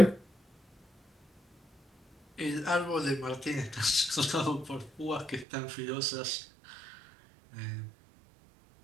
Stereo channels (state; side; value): drops out; left; at 5.5 s